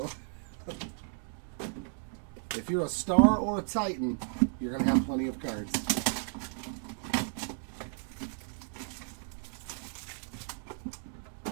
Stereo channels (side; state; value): left; silent; 55 dB below the other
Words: if you're a star or a Titan, you're gonna have plenty of cards.